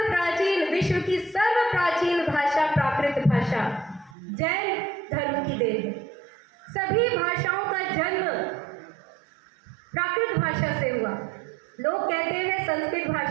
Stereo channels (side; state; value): left; drops out; at 4.2 s